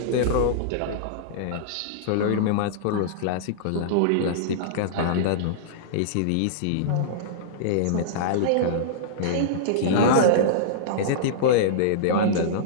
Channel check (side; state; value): both; different; correlation -0.03